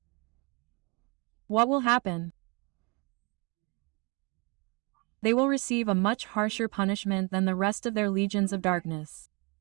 What will happen? They will receive a much harsher punishment than the rest of their legions of darkness.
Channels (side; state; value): left; quieter; 30.0 dB